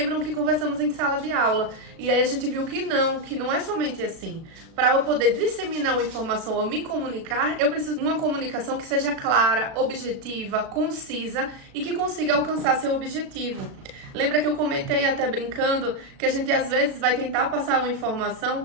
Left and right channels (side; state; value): left; late; 36 ms